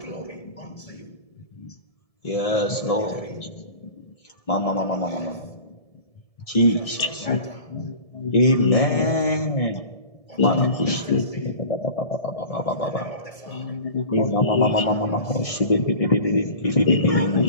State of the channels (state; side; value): late; right; 1.7 ms